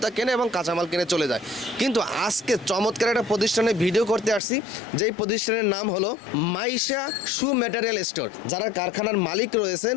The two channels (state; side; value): drops out; right; at 4.4 s